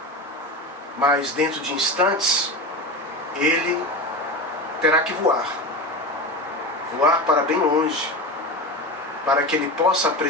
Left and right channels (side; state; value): both; normal; correlation 0.24